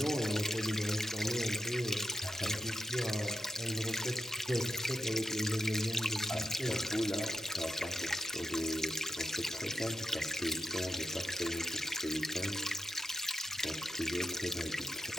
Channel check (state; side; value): normal; both; correlation 0.86